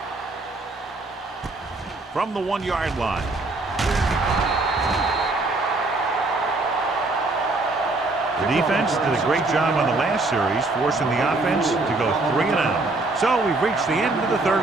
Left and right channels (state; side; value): quieter; left; 3.2 dB